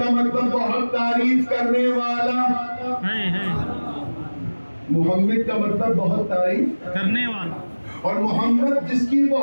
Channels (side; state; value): both; inverted; correlation -1.00